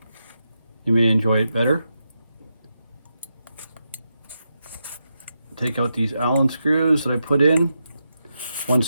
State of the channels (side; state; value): both; inverted; correlation -0.86